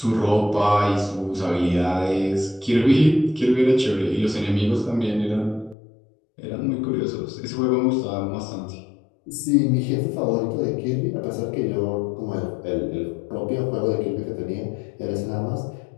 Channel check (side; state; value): right; drops out; at 5.8 s